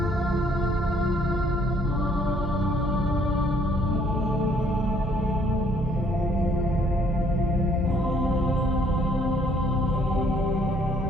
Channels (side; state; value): both; normal; correlation 0.64